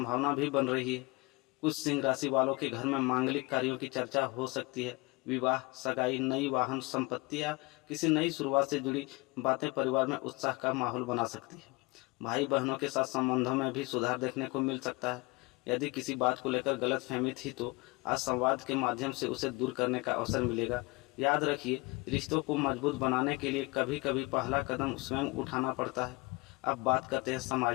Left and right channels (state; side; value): quieter; right; 25.2 dB